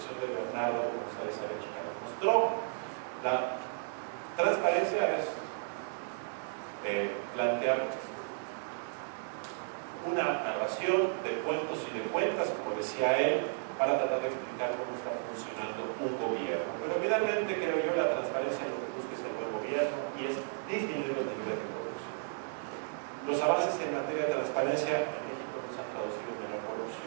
de Bernardo González Arechiga nos mostró. La transparencia es plantear una narración de cuentos y de cuentas, como decía él, para tratar de explicar cómo está funcionando un gobierno. Pero finalmente, creo yo, la transparencia lo que busca es el buen gobierno y es disminuir los niveles de corrupción. Los avances en materia de transparencia en México no se han traducido en la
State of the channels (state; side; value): silent; left; digital silence